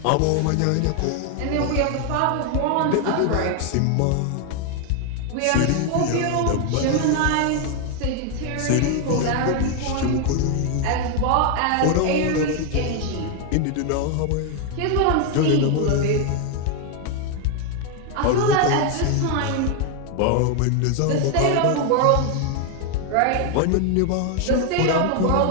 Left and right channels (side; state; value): both; different; correlation 0.01